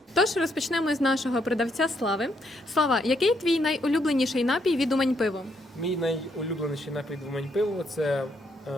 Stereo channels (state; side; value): normal; both; correlation 0.75